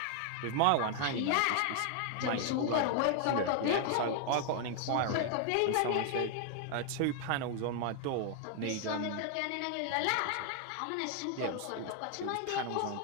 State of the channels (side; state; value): both; different; correlation 0.00